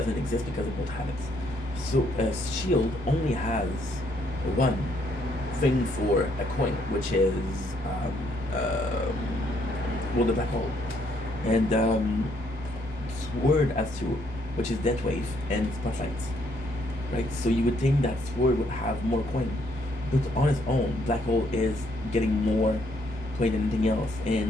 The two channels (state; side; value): normal; both; correlation 0.70